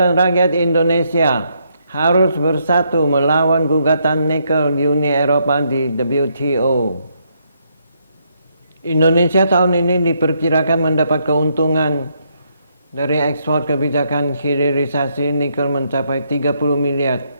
Rakyat Indonesia harus bersatu melawan gugatan nikel Uni Eropa di WTO. Indonesia tahun ini diperkirakan mendapat keuntungan dari ekspor kebijakan hilirisasi nikel mencapai 30 miliar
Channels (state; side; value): inverted; both; correlation -0.75